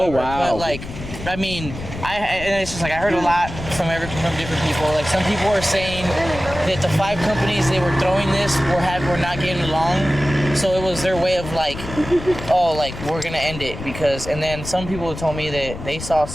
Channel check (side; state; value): left; noise; rumble, 10 dB below the sound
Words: Oh, ever, wow. But like, I mean, and it's just like I heard a lot from different people. Like, some people are saying that the 5 companies they were throwing this were not getting along. So it was their way of like, oh, like, we're gonna end it because. And then some people told me that they saw